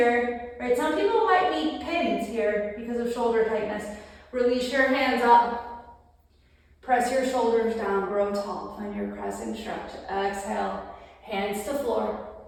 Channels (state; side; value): identical; both; correlation 1.00